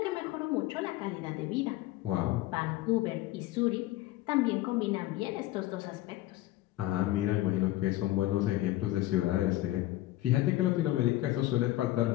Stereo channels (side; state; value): right; quieter; 16.3 dB